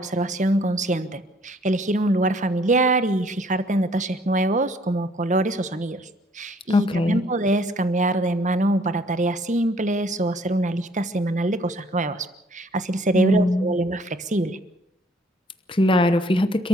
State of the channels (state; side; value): normal; both; correlation 0.61